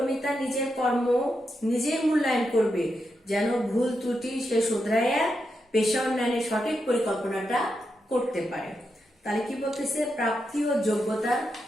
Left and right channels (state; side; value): normal; both; correlation 0.85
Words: তার নিজের কর্ম নিজেই মূল্যায়ন করবে, যেন ভুল ত্রুটি সে শুধরাইয়া পেশা উন্নয়নের সঠিক পরিকল্পনাটা করতে পারে। তাহলে কি বলতেছে? প্রাপ্তি ও যোগ্যতার